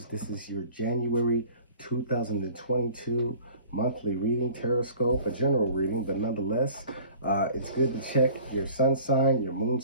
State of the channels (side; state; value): both; inverted; correlation -0.48